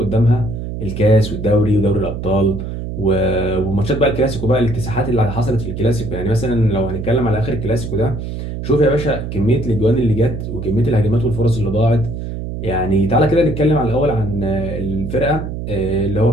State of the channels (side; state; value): right; noise; hum, 6 dB below the sound